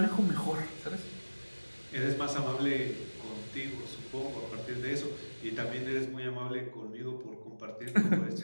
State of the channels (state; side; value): inverted; both; correlation -1.00